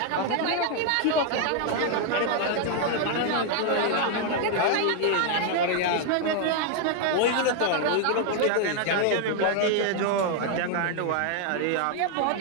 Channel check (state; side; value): different; both; correlation 0.00